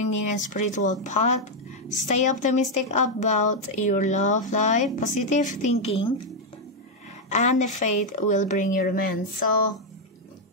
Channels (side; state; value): both; normal; correlation 0.01